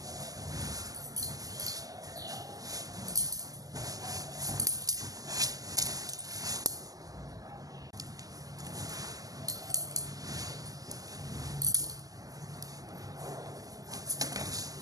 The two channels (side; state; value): left; late; 0.17 ms